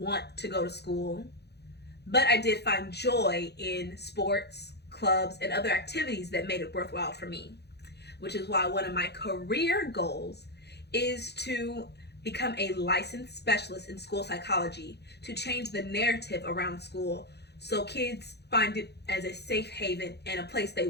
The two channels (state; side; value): late; right; 0.48 ms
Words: to go to school, but I did find joy in sports, clubs, and other activities that made it worthwhile for me, which is why one of my career goals is to become a licensed specialist in school psychology to change the narrative around school so kids find it as a safe haven and a place they